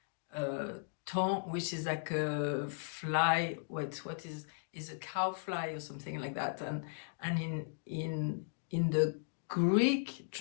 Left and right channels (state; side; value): silent; right; digital silence